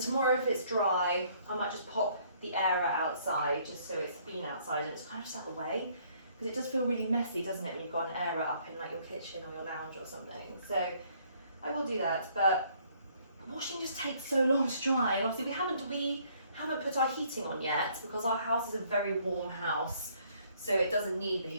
if it's dry, I might just pop the air outside just so it's been outside and it's kind of just out of the way, because it does feel really messy, doesn't it, when you've got an air up in like your kitchen or your lounge or something. So I will do that, but washing just takes so long to dry, and obviously we haven't put our heating on yet because our house is a very warm house. So it doesn't need the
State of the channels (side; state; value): both; inverted; correlation -0.64